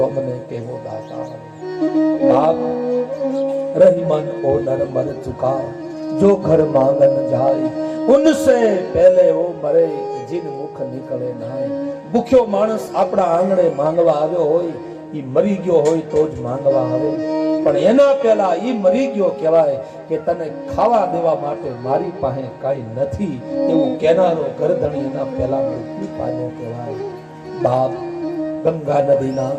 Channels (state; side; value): identical; both; correlation 1.00